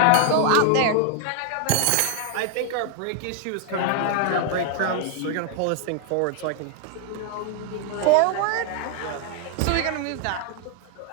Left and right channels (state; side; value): different; both; correlation 0.00